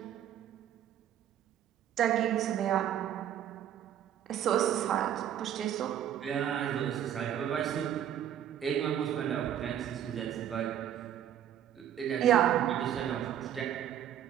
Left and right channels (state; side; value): quieter; left; 10.4 dB